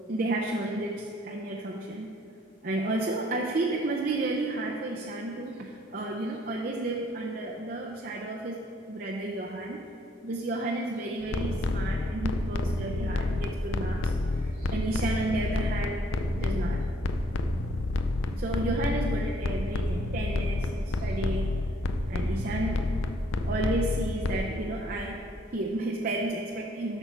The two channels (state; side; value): normal; both; correlation 0.64